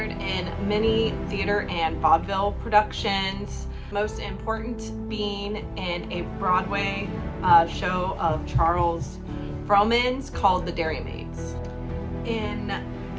in many theater and vaudeville productions, most important being in a Broadway show of Charles Frohman's called The Dairymaids. In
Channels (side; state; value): both; identical; correlation 1.00